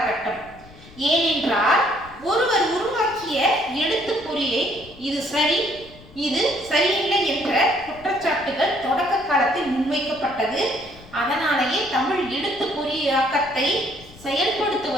ஏனென்றால் ஒருவர் உருவாக்கிய எழுத்துப்பொறியை இது சரி, இது சரியில்லை என்ற குற்றச்சாட்டுகள் தொடக்க காலத்தில் முன்வைக்கப்பட்டது. அதனாலேயே தமிழ் எழுத்துப்பொறியாக்கத்தை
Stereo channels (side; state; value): left; noise; rumble, 22 dB below the sound